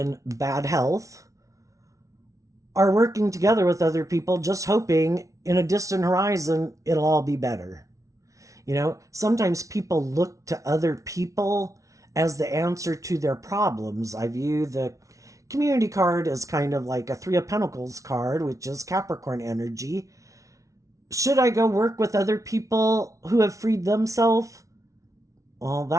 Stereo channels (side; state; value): left; late; 0.16 ms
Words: bad health are working together with other people, just hoping in a distant horizon it'll all be better. You know, sometimes people look to other people as the answer to their problems. I view the community card as kind of like a 3 of Pentacles card, which is Capricorn energy. Should I go work with other people who have freed themselves? Well,